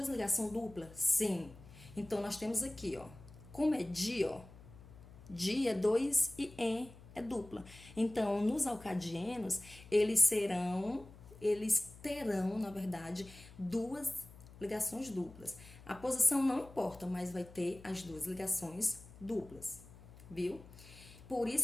ligações duplas? Sim. Então, nós temos aqui, ó, como é di, ó, di é 2 e en é dupla. Então, nos alcadienos, eles terão, na verdade, duas ligações duplas. A posição não importa, mas vai ter as duas ligações duplas, viu? Por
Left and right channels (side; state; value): left; noise; hum, 19 dB below the sound